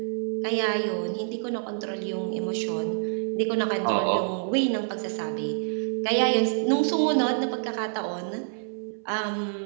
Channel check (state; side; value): silent; left; 60 dB below the other